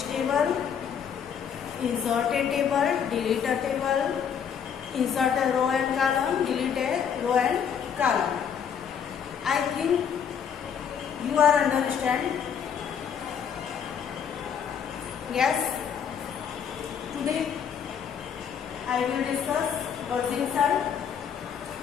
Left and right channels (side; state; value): right; quieter; 7.7 dB